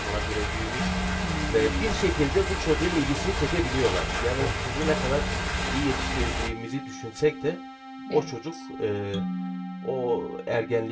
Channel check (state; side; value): identical; both; correlation 1.00